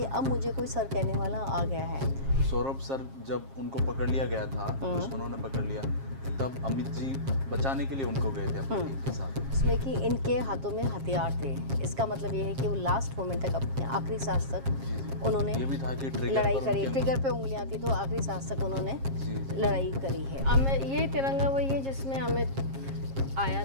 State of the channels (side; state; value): left; late; 7.4 ms